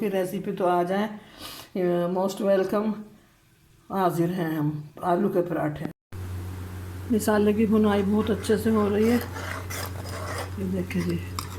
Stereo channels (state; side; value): identical; both; correlation 1.00